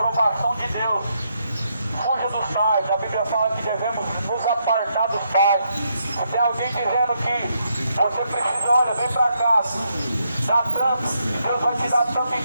de Deus, fuja dos tais. A Bíblia fala que devemos nos apartar dos tais. Se tem alguém dizendo que você precisa, olha, vem para cá, dá tanto, Deus vai te dar tanto em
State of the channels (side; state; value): both; inverted; correlation -0.78